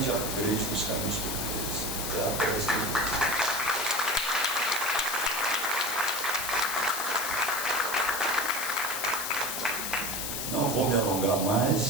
upgrade nos caminhos portugueses. Não vou me alongar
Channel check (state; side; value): noise; left; hiss, 3 dB below the sound